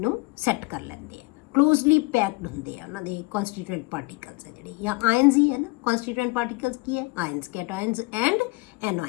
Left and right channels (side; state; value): right; quieter; 25.4 dB